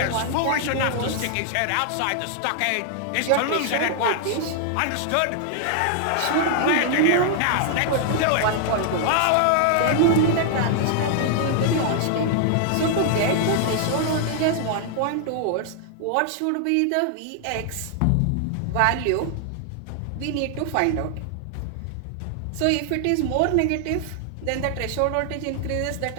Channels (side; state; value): both; different; correlation 0.00